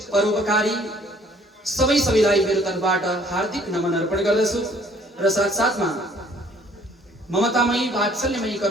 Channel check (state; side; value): normal; both; correlation 0.58